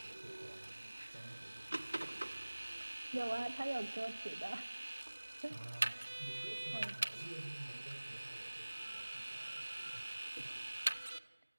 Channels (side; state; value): both; inverted; correlation -1.00